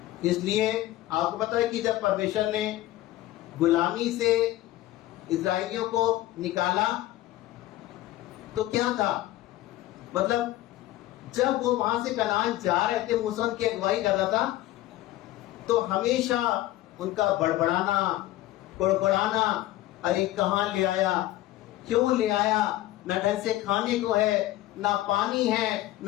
इसलिए आपको पता है कि जब परमेश्वर ने गुलामी से इस्राएलियों को निकाला तो क्या था, मतलब जब वो वहां से कनान जा रहे थे, मूसा की अगुवाई कर रहा था, तो हमेशा उनका बड़बड़ाना, कुड़कुड़ाना, अरे कहाँ ले आया, क्यों ले आया, न ढंग से खाने को है, ना पानी है,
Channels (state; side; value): quieter; right; 15.6 dB